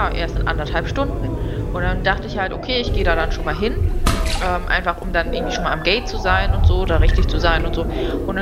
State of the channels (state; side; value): identical; both; correlation 1.00